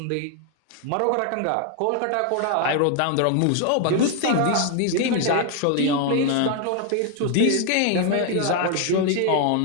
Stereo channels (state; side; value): different; both; correlation 0.00